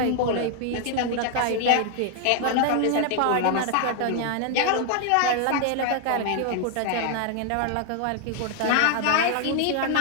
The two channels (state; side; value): different; both; correlation 0.00